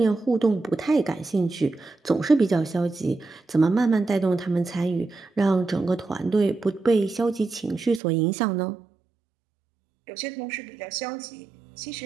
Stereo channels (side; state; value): left; drops out; at 8.0 s